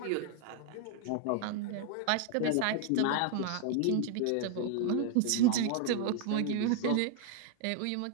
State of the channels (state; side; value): different; both; correlation 0.00